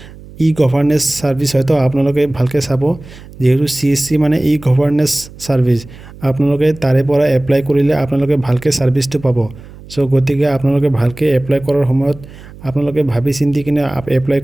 গভৰ্নেন্স সাৰ্ভিস হয়তো আপোনালোকে ভালকৈ চাব যেহেতু CSC মানে গভৰ্নেন্স সাৰ্ভিস আপোনালোকে তাৰে পৰা এপ্লাই কৰিলে আপোনালোকে ভালকৈ সাৰ্ভিসটো পাব সো গতিকে আপোনালোকে ভালকৈ এপ্লাই কৰাৰ সময়ত আপোনালোকে ভাবি চিন্তি কিনে এপ্লাই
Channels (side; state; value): right; noise; hum, 19 dB below the sound